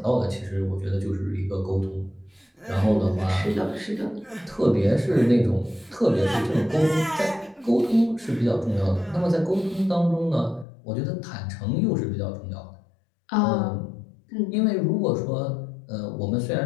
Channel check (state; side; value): drops out; right; at 10.7 s